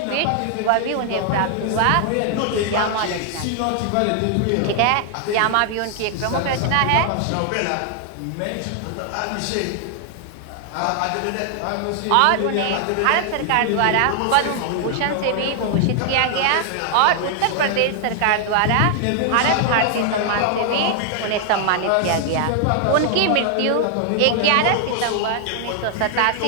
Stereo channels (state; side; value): different; both; correlation 0.00